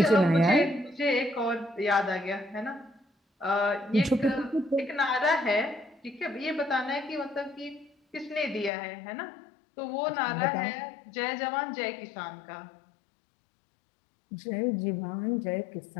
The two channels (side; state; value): right; drops out; at 8.7 s